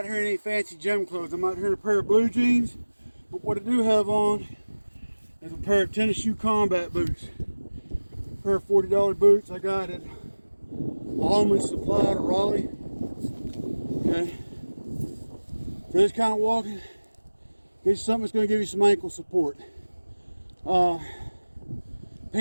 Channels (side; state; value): both; inverted; correlation -1.00